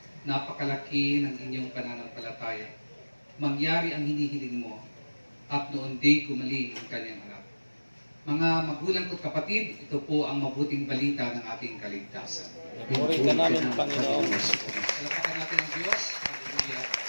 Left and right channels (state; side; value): inverted; both; correlation -1.00